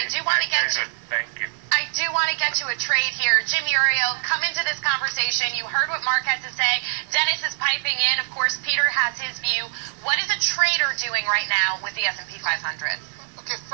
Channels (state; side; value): silent; left; 60 dB below the other